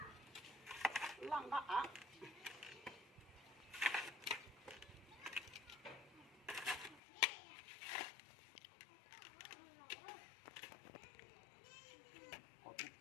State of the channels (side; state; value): right; drops out; at 7.0 s